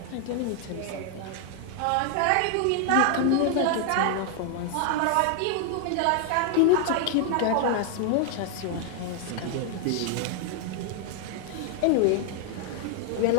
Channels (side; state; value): both; different; correlation 0.00